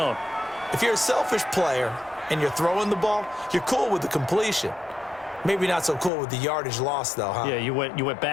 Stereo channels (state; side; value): drops out; right; at 6.1 s